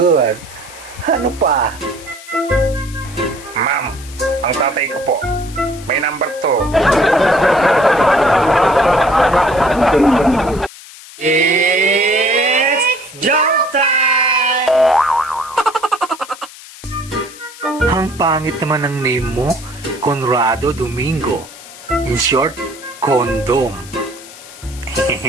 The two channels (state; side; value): noise; left; hiss, 18 dB below the sound